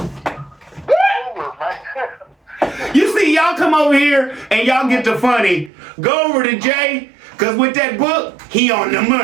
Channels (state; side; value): drops out; left; at 5.7 s